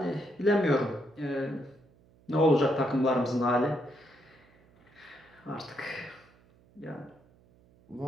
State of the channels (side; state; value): right; noise; hum, 29 dB below the sound